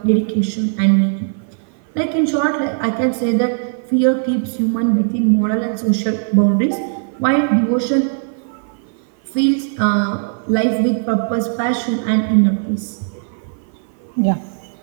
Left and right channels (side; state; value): left; silent; 57 dB below the other